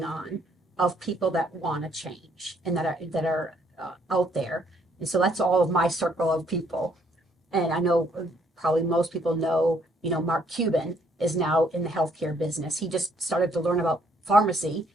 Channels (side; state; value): both; normal; correlation 0.67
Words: on of people that want to change and that are out there. And so that's all of my circle of people. And I know probably most people know, Mark Cuban is now in the healthcare business. He just started to learn about pharmacy